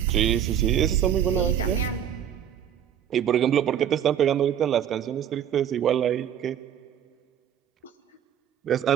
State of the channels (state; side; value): quieter; left; 9.6 dB